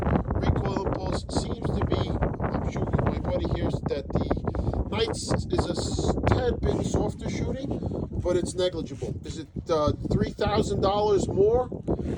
Recoil impulse seems to be, I'm shooting with my buddy here, that the Knight's is a tad bit softer shooting, but it's negligible. Is it $3,000 more?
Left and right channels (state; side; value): identical; both; correlation 1.00